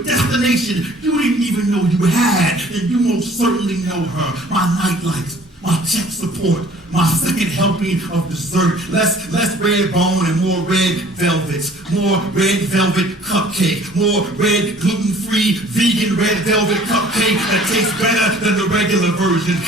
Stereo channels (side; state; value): both; normal; correlation 0.53